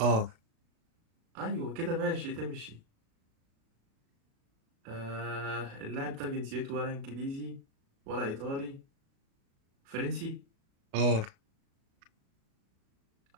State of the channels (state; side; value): late; left; 36 ms